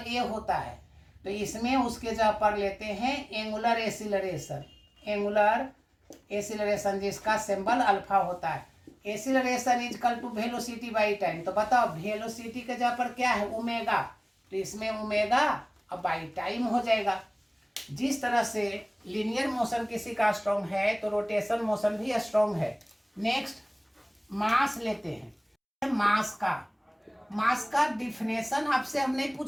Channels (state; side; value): identical; both; correlation 1.00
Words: ए होता है, तो इसमें उसके जगह पर लेते हैं एंगुलर एसिलरेशन। एंगुलर एसिलरेशन जिसका सिंबल अल्फा होता है। Acceleration is equal to velocity by time. तो बताओ, वेलोसिटी के जगह पर क्या है, ओमेगा, तो इसमें ओमेगा और बाई टाइम हो जाएगा। जिस तरह से लीनियर मोशन किसी का स्ट्रॉन्ग है, तो रोटेशन मोशन भी स्ट्रॉन्ग है। नेक्स्ट मास लेते हैं। मास का डिफिनेशन आपसे हम नहीं